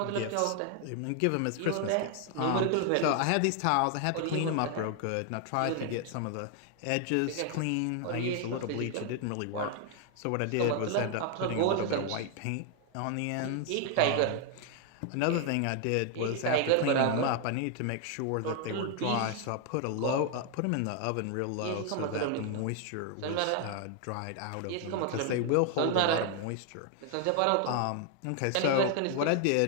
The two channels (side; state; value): both; different; correlation 0.00